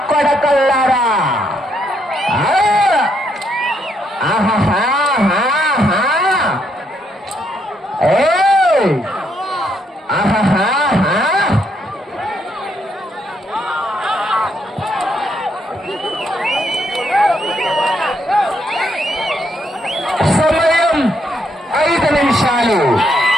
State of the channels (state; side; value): normal; both; correlation 0.75